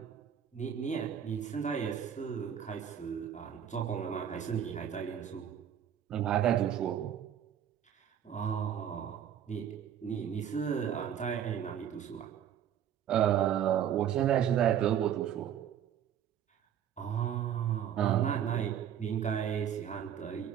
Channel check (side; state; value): left; quieter; 9.4 dB